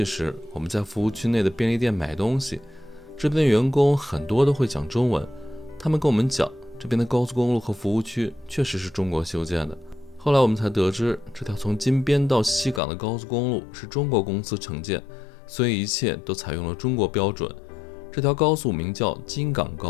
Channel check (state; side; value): drops out; right; at 12.8 s